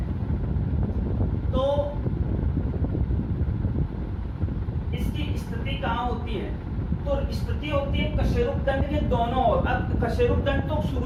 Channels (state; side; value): identical; both; correlation 1.00